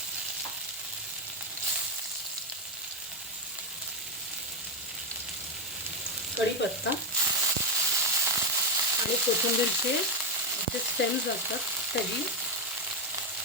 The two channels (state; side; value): normal; both; correlation 0.09